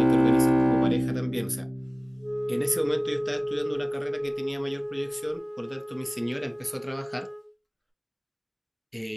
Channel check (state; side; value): identical; both; correlation 1.00